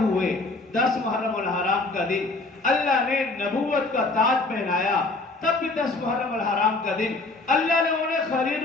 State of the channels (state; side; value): quieter; right; 3.3 dB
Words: ہوئے 10 محرم الحرام کا دن، اللہ نے نبوت کا تاج پہنایا، تب بھی 10 محرم الحرام کا دن، اللہ نے انہیں خلیل